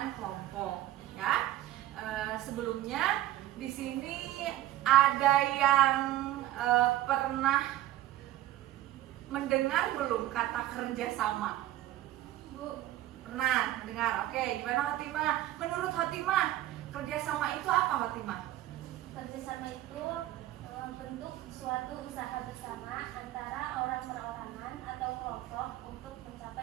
kelompok. Ya, sebelumnya di sini ada yang pernah mendengar belum kata kerjasama? Bu, Pernah mendengar? Oke, gimana Fatimah? Menurut Fatimah, kerjasama itu apa Fatimah? Kerjasama itu bentuk suatu usaha bersama antara orang perorangan atau kelompok untuk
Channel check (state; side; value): quieter; left; 14.4 dB